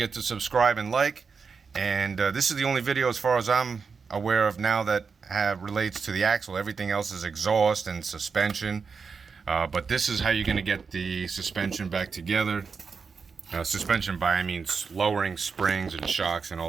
to subscribe and like. And this is the only video, as far as I'm aware of now, that relates to the axle. Everything else is exhaust and suspension. But this is how you're going to get the suspension back together. Suspension by, I mean lowering springs and shocks and all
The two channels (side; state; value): left; quieter; 5.4 dB